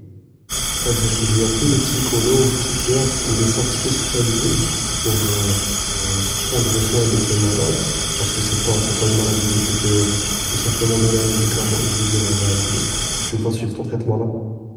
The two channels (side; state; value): both; identical; correlation 1.00